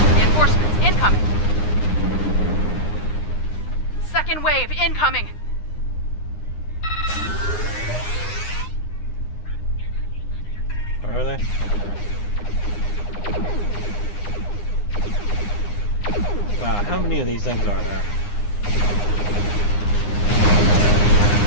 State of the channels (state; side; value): late; right; 9.8 ms